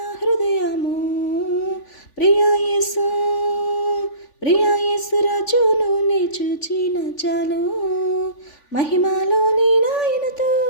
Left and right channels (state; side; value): late; right; 3.5 ms